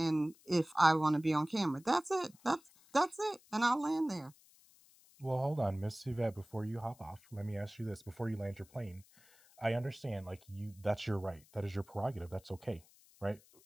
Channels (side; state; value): left; noise; hiss, 27 dB below the sound